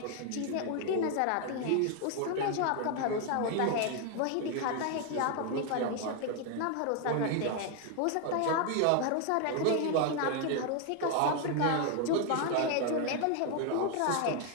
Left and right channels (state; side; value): different; both; correlation 0.00